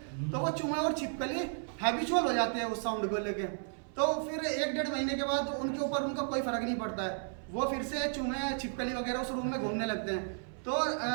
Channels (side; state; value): left; silent; 55 dB below the other